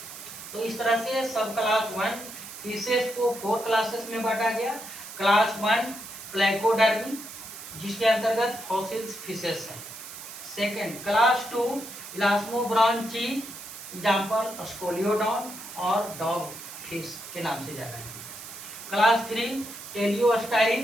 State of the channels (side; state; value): right; noise; hiss, 12 dB below the sound